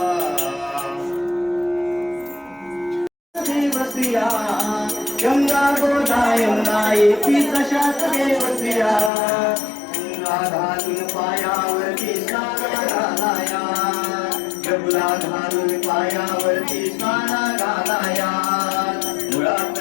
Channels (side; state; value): right; drops out; at 9.1 s